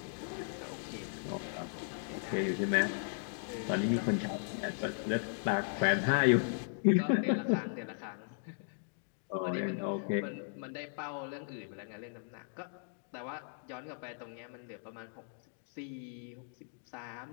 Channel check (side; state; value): right; silent; digital silence